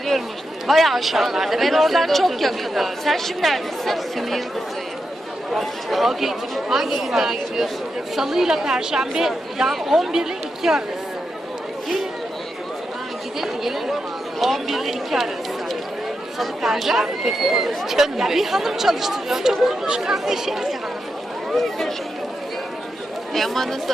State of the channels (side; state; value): both; normal; correlation 0.87